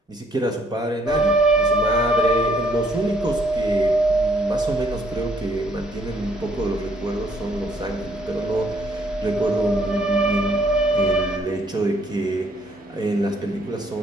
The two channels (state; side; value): normal; both; correlation 0.66